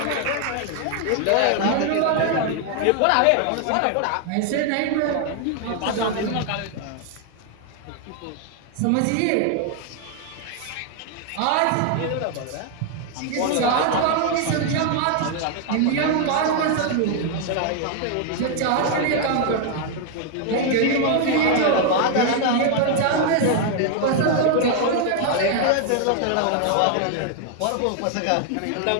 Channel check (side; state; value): both; different; correlation 0.00